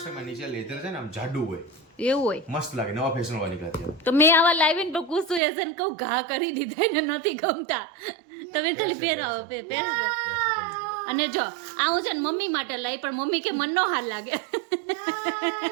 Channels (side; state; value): left; drops out; at 5.4 s